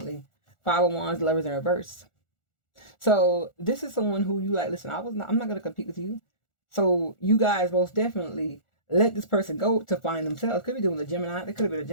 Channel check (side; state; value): right; late; 1.4 ms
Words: Five of Wands, lovers in reverse. So this is someone who you like, listen, I'm not gonna compete with you. So you guys most definitely let this person go to find themselves. Could be doing a Gemini. They could have been a